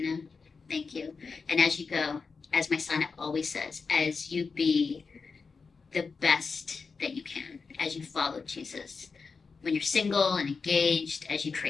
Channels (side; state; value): right; quieter; 4.8 dB